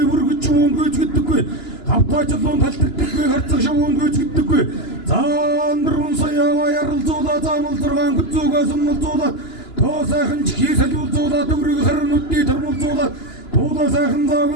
бүргэж уун гүйцэгдэггүй хавтаа чулуун талтардаггүй харцах шавуун гүйцэгдэггүй заандар унсаяава яралзуулаа заамалзаргаан гүцүүгээ сумалзуулаа тоо сайхан чихий солиулзуулаа төгрөг харнуудыг тормолзуулаа туудаа сайхан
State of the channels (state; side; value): late; right; 2.9 ms